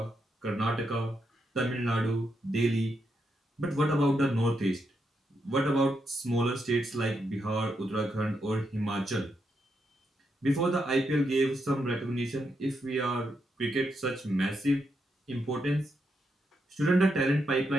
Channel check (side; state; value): both; normal; correlation 0.82